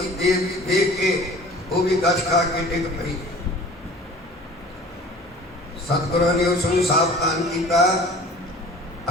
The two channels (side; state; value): both; normal; correlation 0.45